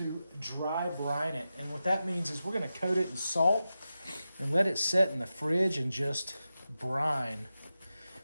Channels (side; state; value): both; inverted; correlation -0.92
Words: dry brine it. And what that means is we're going to coat it in salt and let it set in the fridge and just brine.